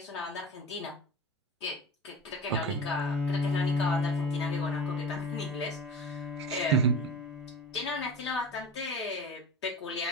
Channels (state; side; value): normal; both; correlation 0.32